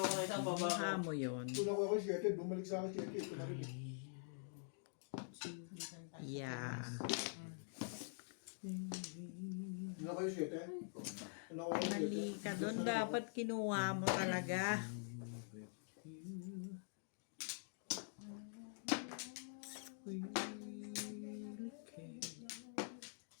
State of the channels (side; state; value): right; silent; digital silence